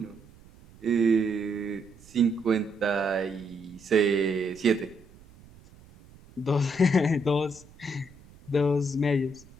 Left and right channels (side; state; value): right; noise; rumble, 24 dB below the sound